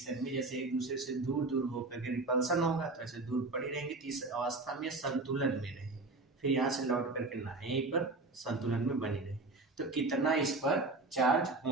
में, जैसे एक दूसरे से दूर दूर होकर के रिपल्सन होगा तो ऐसे दूर पड़ी रहेंगी, तो इस अवस्था में संतुलन में रहे, फिर यहाँ से लौट करके ना यहीं पर संतुलन में बनी रहे। तो कितना इस पर चार्ज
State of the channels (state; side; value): quieter; left; 3.3 dB